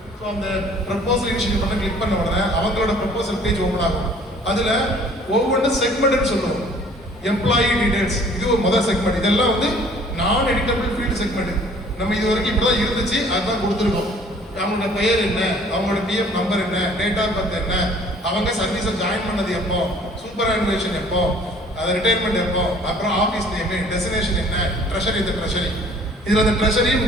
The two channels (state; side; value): normal; both; correlation 0.54